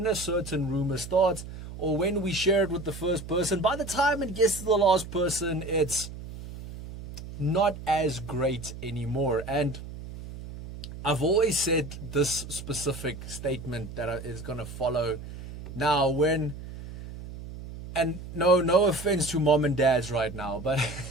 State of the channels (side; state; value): right; noise; hum, 12 dB below the sound